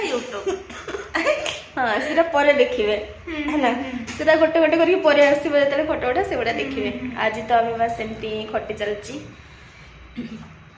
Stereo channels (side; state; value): both; identical; correlation 1.00